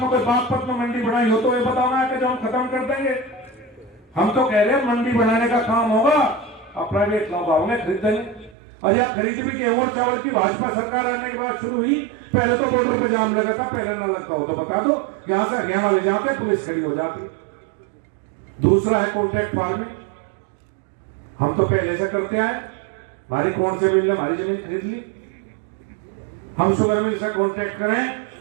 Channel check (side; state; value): left; drops out; at 8.6 s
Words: में कोई बागपत में मंडी बनाई हो तो ये बताना है कि जो हम खत्म कर देंगे। हम तो कह रहे हैं मंडी बनाने का काम होगा, और प्राइवेट लोग आओगे खरीदेंगे। और या खरीद भी गेहूं चावल की भाजपा सरकार आने के बाद शुरू हुई, पहले तो बॉर्डर पे जाम लगा था, पहले ना लगता हो तो बता दो, यहां से हरियाणा ले जाते पुलिस खड़ी हो जाती। दूसरा है कॉन्ट्रैक्ट फार्मिंग, हम तो पहले से करते आए। हमारी कौन से मिल ने हमारी जमीन खरीद ली, हम शुगर मिल से कॉन्ट्रैक्ट करें,